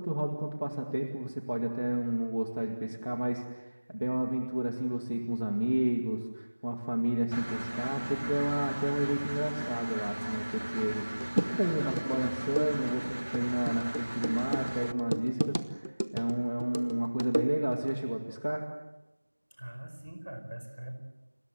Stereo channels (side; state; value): both; inverted; correlation -1.00